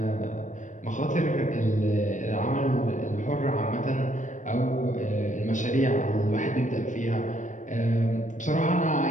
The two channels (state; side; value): late; right; 0.37 ms